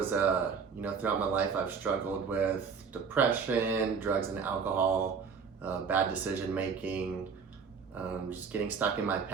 throughout my life I've struggled with depression, drugs and alcohol, bad decision making, just getting stuck in my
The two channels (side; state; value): left; quieter; 5.9 dB